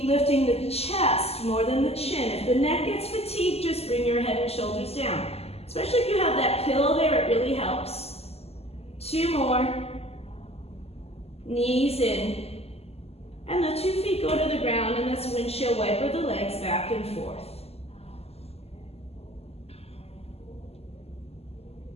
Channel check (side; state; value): right; late; 0.29 ms